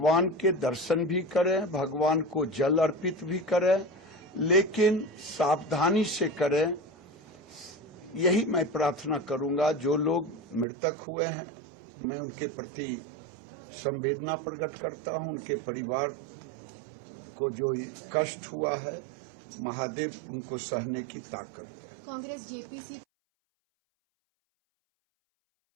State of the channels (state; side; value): drops out; left; at 10.7 s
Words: के दर्शन भी करें, भगवान को जल अर्पित भी करें, लेकिन सावधानी से करें। यही मैं प्रार्थना करूंगा। जो लोग मृतक हुए हैं मैं उनके प्रति संवेदना प्रकट करता हूं। उनके परिवार को जो कष्ट हुआ है, महादेव उनको सहने की ताकत दे। कांग्रेस जेपीसी